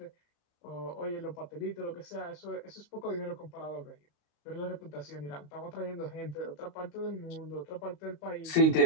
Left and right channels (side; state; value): right; late; 35 ms